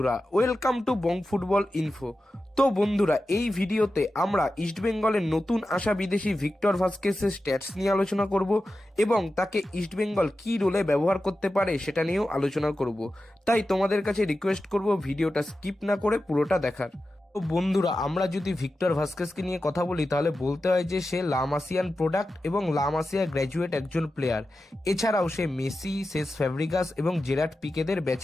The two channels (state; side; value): normal; both; correlation 0.92